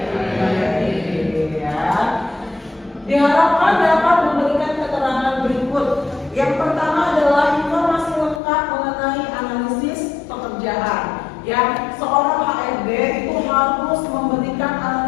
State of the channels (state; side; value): drops out; right; at 8.4 s